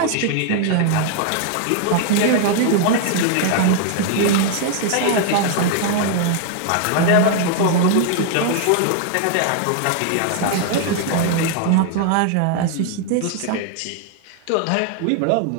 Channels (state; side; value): different; both; correlation 0.00